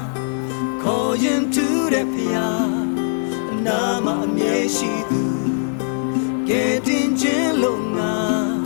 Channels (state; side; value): silent; right; 60 dB below the other